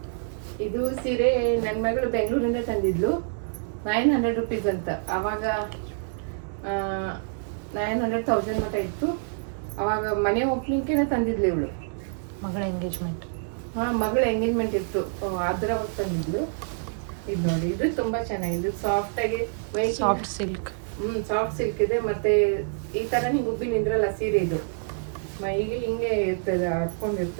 ಇದು ಸೀರೆ ನನ್ನ ಮಗಳು ಬೆಂಗಳೂರಿಂದ ತಂದಿದ್ಲು. 900 ರುಪೀಸ್ ಅಂತ. ಆವಾಗ 900,000 ಮಟ್ಟ ಇತ್ತು. ಅವಾಗ ಮನೆ ಓಪನಿಂಗ್ಗೆ ತಂದಿದ್ಲು ಇವಳು. ಮಗಳ ಎಂಗೇಜ್ಮೆಂಟ್. ಮಗಳ ಎಂಗೇಜ್ಮೆಂಟ್ ಇತ್ತು, ಅದ್ರ ತಂದಿದ್ಲು. ಇದು ನೋಡಿ, ಇದು ತುಂಬಾ ಚೆನ್ನಾಗಿದೆ. ಸಾಫ್ಟ್ ಆಗಿ ಸಾಫ್ಟ್ ಸಿಲ್ಕ್. ಸಾಫ್ಟ್ ಸಿಲ್ಕ್ ಇದೆ. ಮತ್ತೆ ಈ ತರ ಹಿಂಗೆ ಉಬ್ಬಿ ನಿಂದ್ರಲ್ಲ ಸೀರೆ, ಇದು ಮೈಗೆ ಹಿಂಗೆ ಇರ್ತದೆ,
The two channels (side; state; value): left; silent; digital silence